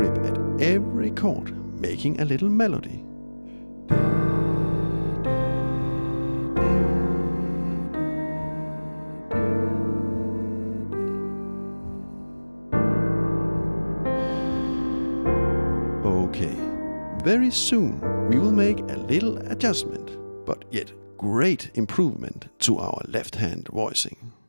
at every chord, making a little melody. Okay, very soon we will make a little adjustment, but yet great improvement to our left-hand voicing.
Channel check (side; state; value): both; inverted; correlation -1.00